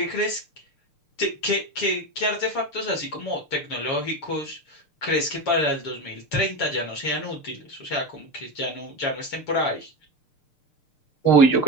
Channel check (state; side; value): late; right; 6.6 ms